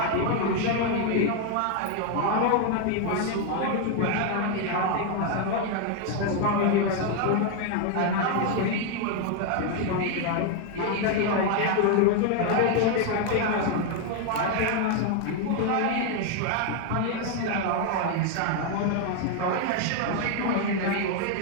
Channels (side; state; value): both; different; correlation 0.01